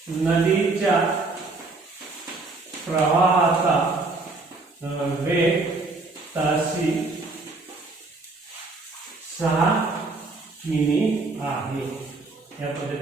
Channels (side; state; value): left; quieter; 3.5 dB